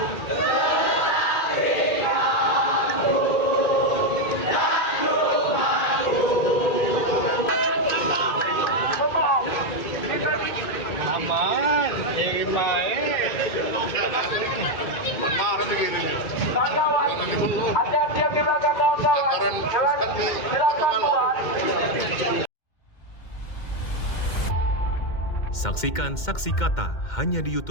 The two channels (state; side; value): late; right; 2.1 ms